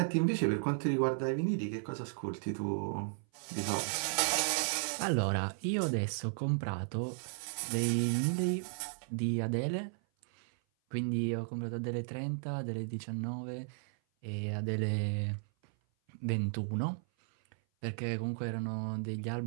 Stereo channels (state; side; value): silent; left; 55 dB below the other